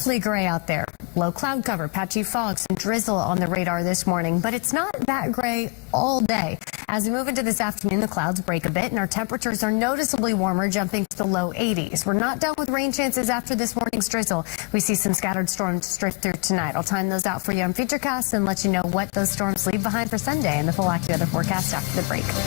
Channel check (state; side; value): quieter; right; 28.0 dB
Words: gray out there. Low cloud cover, patchy fog, some drizzle on the radar this morning, but it's not that gray all day. As we move into this afternoon, the clouds break a bit and our temperatures are noticeably warmer, jumping to the low 80s. We're not done with rain chances after this morning's drizzle. We see some scattered storms drift through tonight. I'll time those out for you on Futurecast and let you know what those storms leave behind for Sunday and the full AccuWeather forecast after the break.